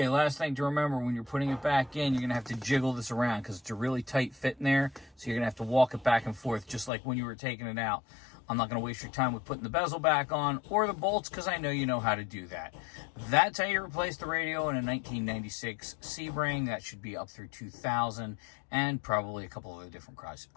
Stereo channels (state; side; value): drops out; right; at 6.9 s